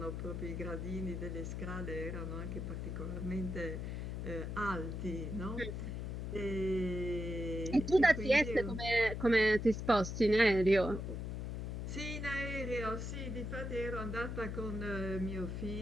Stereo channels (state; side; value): noise; left; hum, 4 dB below the sound